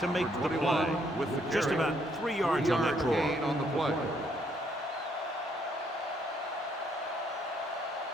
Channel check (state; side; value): normal; both; correlation 0.70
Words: make the play. With the Just about 3 yards on that draw. On the play.